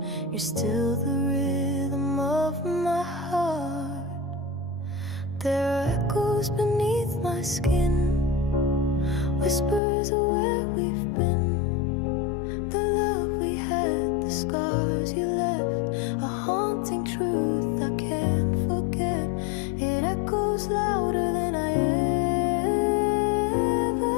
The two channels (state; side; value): drops out; right; at 9.8 s